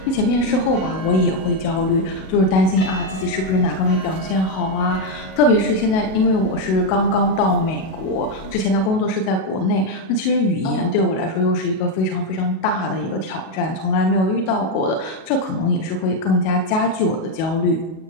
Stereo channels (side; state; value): right; late; 37 ms